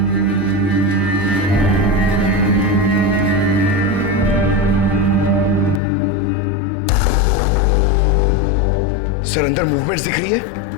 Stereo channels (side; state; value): right; drops out; at 5.8 s